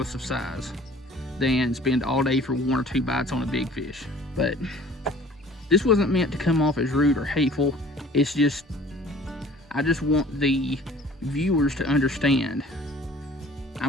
of size than spend all day for 1 or 2 bites on a big fish. But this wasn't meant to come off as rude or hateful. It's just, I just want the viewers to understand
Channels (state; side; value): normal; both; correlation 0.50